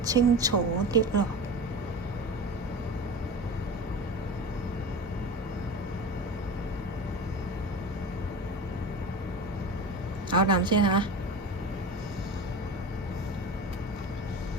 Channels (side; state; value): both; normal; correlation 0.30